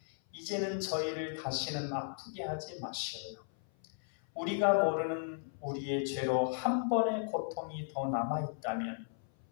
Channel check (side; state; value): right; silent; 54 dB below the other